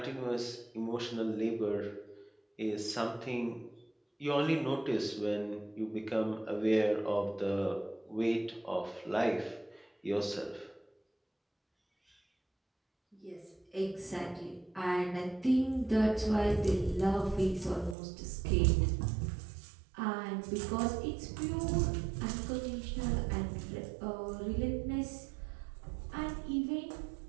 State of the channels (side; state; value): left; drops out; at 17.9 s